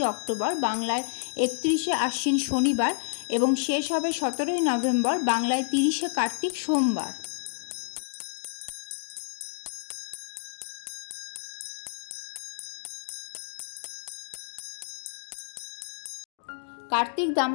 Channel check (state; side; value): silent; right; digital silence